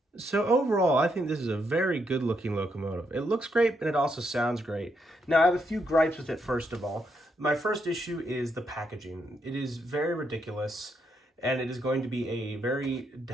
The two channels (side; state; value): both; normal; correlation 0.78